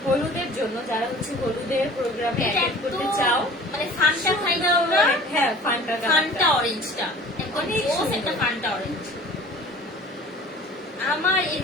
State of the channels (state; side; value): normal; both; correlation 0.45